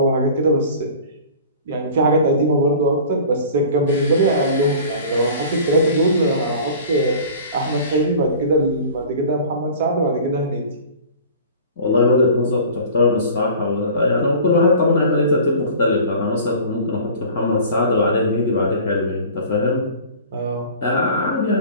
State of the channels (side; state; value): both; inverted; correlation -0.42